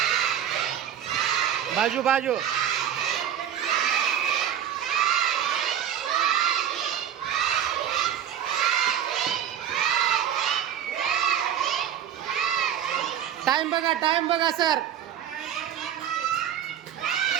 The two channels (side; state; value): left; quieter; 9.9 dB